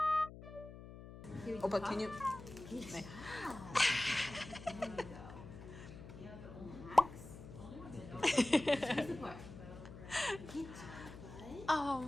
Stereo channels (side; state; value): left; noise; hum, 14 dB below the sound